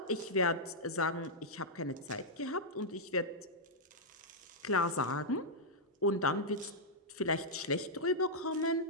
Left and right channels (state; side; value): normal; both; correlation -0.07